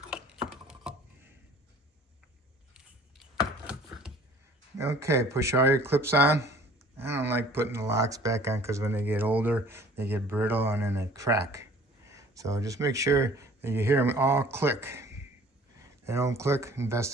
Okay, push all your clips on. I don't like putting the locks back on because when they get older, they get brittle and then they crack. So just make sure that you hear them all click. If they don't click,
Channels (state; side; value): normal; both; correlation 0.51